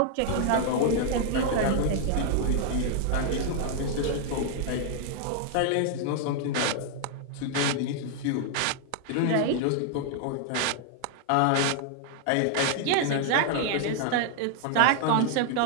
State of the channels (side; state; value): both; different; correlation 0.00